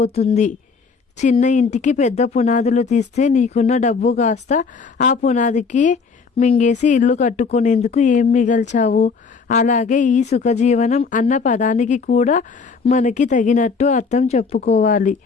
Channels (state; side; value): quieter; right; 5.0 dB